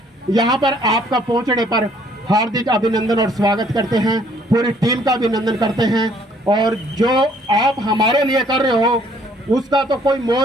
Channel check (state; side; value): normal; both; correlation 0.62